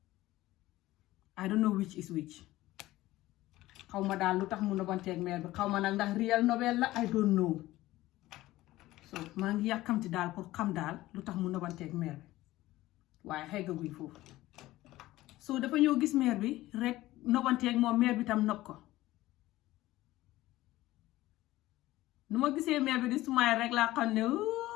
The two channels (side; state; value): right; quieter; 16.8 dB